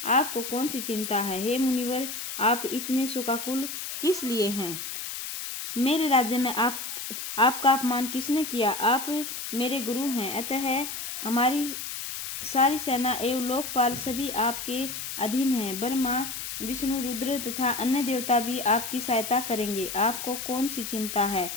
आपको कौन सी चिंता है? हे मुनिवर, आप इतने शोकाकुल किस लिए हैं? मेरे राज्य में आपका अपमान किसने किया? आप मेरे गुरु हैं, अतः हमारी सारी सेना एवं लोकपाल सभी आपके अधीन हैं। ब्रह्मा, विष्णु, रुद्र तथा अन्य देवता भी आपकी सहायता करेंगे। आपको कौन सी चिंता है?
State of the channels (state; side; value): noise; left; hiss, 6 dB below the sound